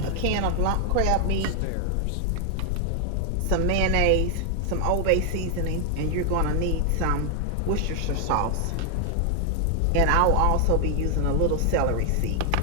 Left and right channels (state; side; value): different; both; correlation 0.00